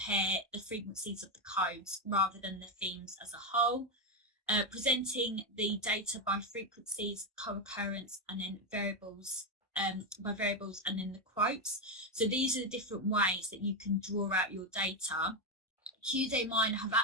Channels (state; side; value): normal; both; correlation 0.08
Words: the frequencies of the codes rather than the themes as a whole. Presenting the data by frequencies, co-occurrence, and then variables, by variables, and then the quotes. So these are the different ways that you can draw out your data. QDA Miner have